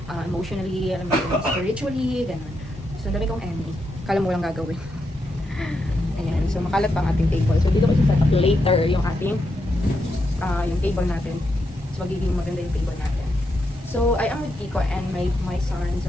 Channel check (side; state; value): both; normal; correlation 0.83